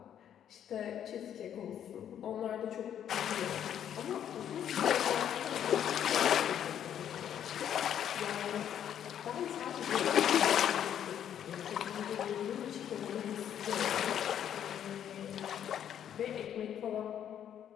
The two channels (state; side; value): quieter; right; 9.8 dB